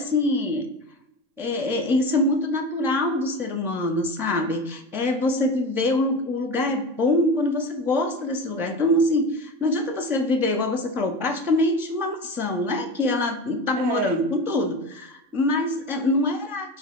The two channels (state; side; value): late; left; 3.6 ms